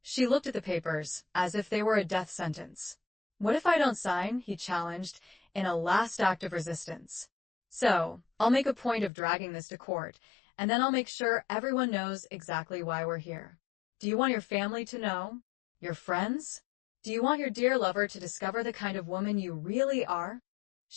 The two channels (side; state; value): right; drops out; at 9.1 s